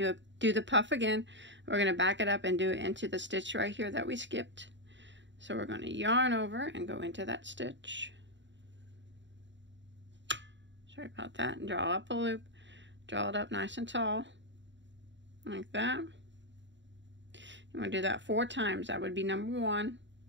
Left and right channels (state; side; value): late; left; 0.53 ms